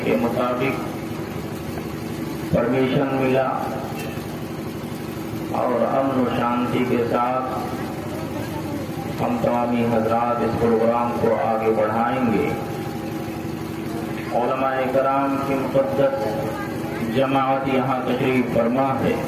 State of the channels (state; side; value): identical; both; correlation 1.00